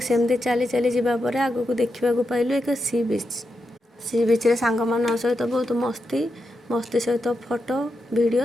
सेमती चली चली जावापर आग को देखा पाइलु एक सी बीच रे सांग मान सहित बहुत मस्ती सहित फोटो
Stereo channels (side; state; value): both; normal; correlation 0.86